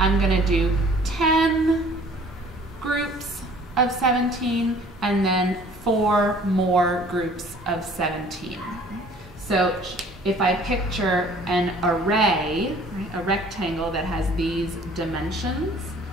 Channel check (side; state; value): both; normal; correlation 0.52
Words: going to do 10 groups of 17 and then 4 more groups of 17. So if I picture an array, right, a rectangle that has these dimensions,